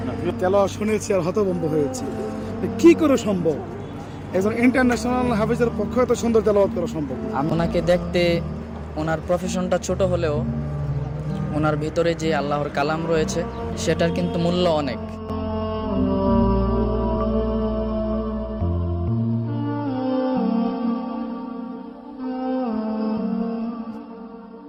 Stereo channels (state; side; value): identical; both; correlation 1.00